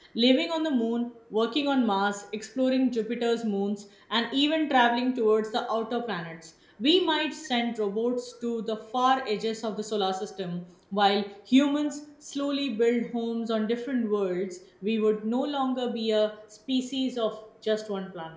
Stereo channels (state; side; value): identical; both; correlation 1.00